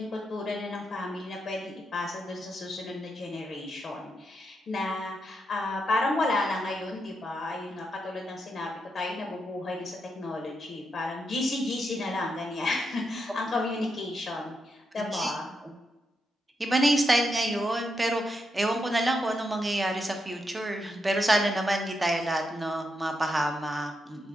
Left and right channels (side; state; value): both; normal; correlation 0.83